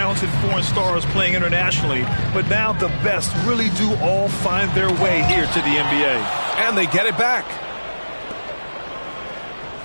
foreign stars playing internationally, but now the best really do all find their way here to the NBA. And they get it back.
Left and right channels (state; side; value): inverted; both; correlation -1.00